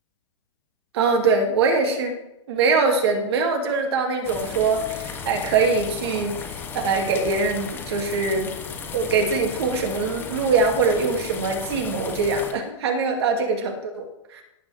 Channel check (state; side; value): quieter; left; 3.5 dB